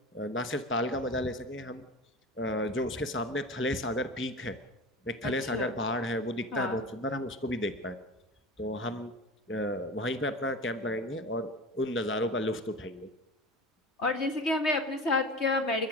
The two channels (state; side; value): normal; both; correlation 0.32